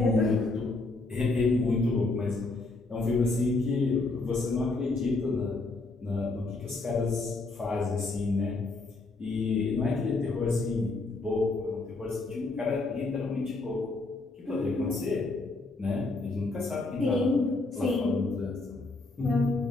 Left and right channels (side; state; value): right; quieter; 3.3 dB